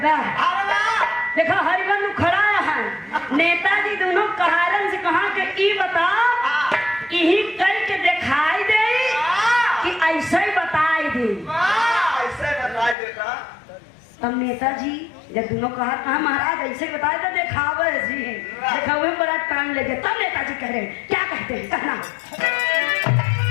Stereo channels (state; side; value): drops out; right; at 13.0 s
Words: अरे वाह, देखो हरिबंधु खड़ा है, नेताजी दोनों कहारन से कहा कि ई बता यही करके दिखाई दे कि ऐसे ही बताई दे। वाह, ऐसे बताई देता। तब नेताजी जब दोनों कहा महाराज ऐसे ही बताए तो दिखावे जी दिखावे में बड़ा टाइम लगे। तब नेताजी कह रहे हैं क्या कहते हैं कहना।